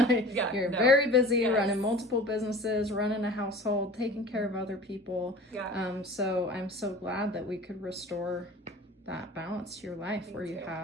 You're very busy running multiple businesses, running a household, taking care of other people. Yeah. So I'm so glad that we could restore that balance to your life where you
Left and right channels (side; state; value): both; normal; correlation 0.41